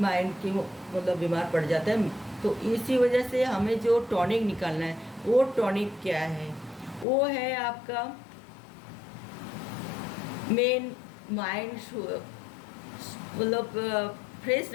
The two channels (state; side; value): drops out; right; at 7.1 s